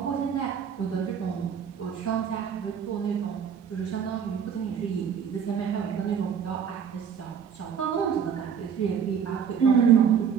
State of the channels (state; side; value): quieter; left; 7.5 dB